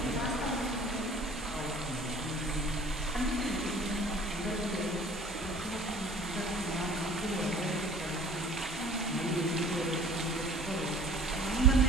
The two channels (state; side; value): normal; both; correlation 0.49